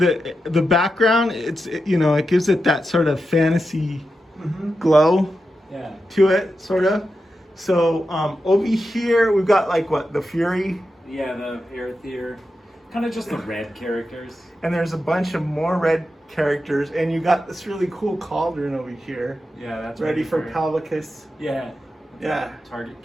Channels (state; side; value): normal; both; correlation 0.89